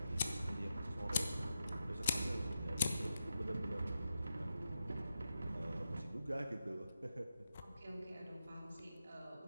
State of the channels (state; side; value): inverted; both; correlation -0.88